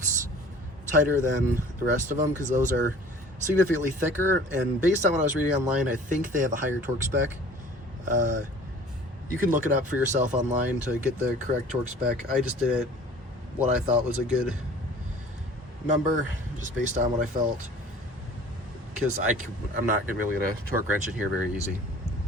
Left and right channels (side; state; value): both; normal; correlation 0.47